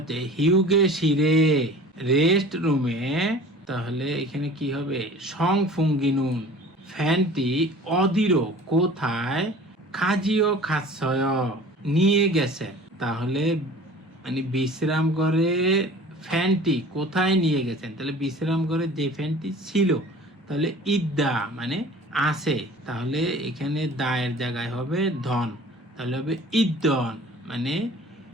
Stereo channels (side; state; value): both; normal; correlation 0.44